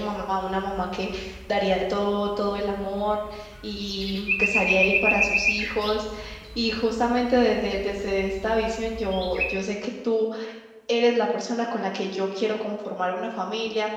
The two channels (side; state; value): both; identical; correlation 1.00